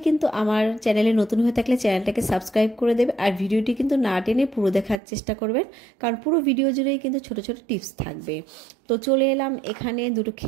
কিন্তু আমার চ্যানেলে নতুন হয়ে থাকলে চ্যানেলটাকে সাবস্ক্রাইব করে দেবে, আর ভিডিওটি কিন্তু না টেনে পুরো দেখার চেষ্টা করবেন, কারণ পুরো ভিডিও জুড়েই কিন্তু ছোট ছোট টিপস থাকবে। তো চলে এলাম এখানে 2টো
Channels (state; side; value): drops out; left; at 5.0 s